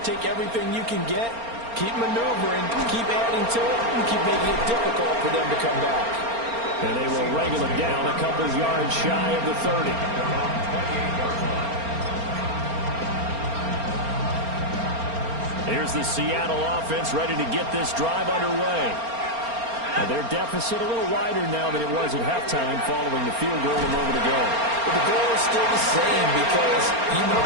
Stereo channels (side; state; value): left; late; 4.3 ms